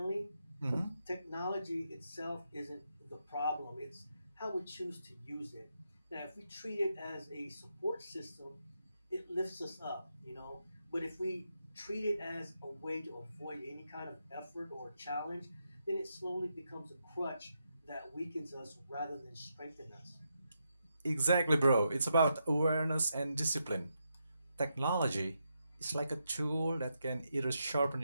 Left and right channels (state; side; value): inverted; both; correlation -0.83